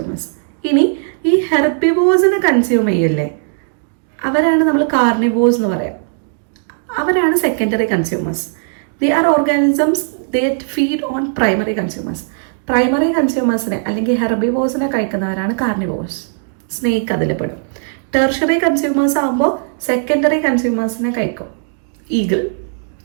ഇനി ഈ ഹെർബിവോസിനെ കൺസ്യൂം ചെയ്യില്ലേ, അവരാണ് നമ്മൾ കാർണിവോസ് എന്ന് പറയാം. അവരാണ് secondary consumers. They are organisms that feed on primary consumers. Primary കൺസ്യൂമേഴ്സിനെ അല്ലെങ്കിൽ ഹെർബിവോസിനെ കഴിക്കുന്നവരാണ് കാർണിവോസ്. സ്നേക്ക് അതിൽ പെടും. ടെർഷറി കൺസ്യൂമേഴ്സ് ആകുമ്പോൾ സെക്കൻഡറി കൺസ്യൂമേഴ്സിനെ കഴിക്കും, ഈഗിൾ.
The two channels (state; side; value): silent; left; digital silence